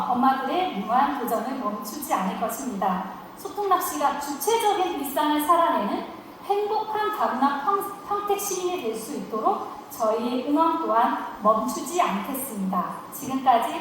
엄마들의 무한 도전을 멈추지 않을 것입니다. 소통낚시가 주체적인 일상을 살아내는 행복한 다문화 평택 시민이 될 수 있도록 저희의 응원 또한 멈추지 않겠습니다.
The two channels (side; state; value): both; identical; correlation 1.00